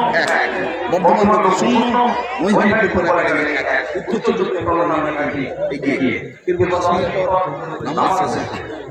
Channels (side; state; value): both; identical; correlation 1.00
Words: বর্ধমান লোক 0 নৈহাটি ফুটবল একাডেমি 1 উত্তর চব্বিশ পরগনা নৈহাটি এগিয়ে দীর্ঘ 10 মিনিট পর নামাজ শেষে